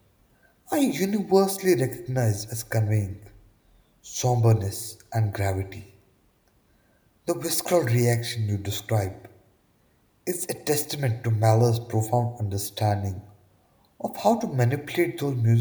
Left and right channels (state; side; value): identical; both; correlation 1.00